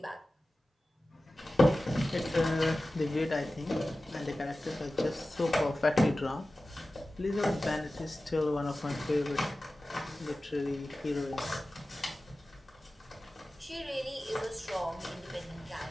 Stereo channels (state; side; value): normal; both; correlation 0.96